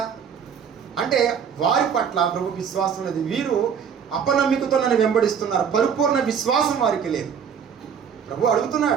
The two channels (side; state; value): left; quieter; 7.3 dB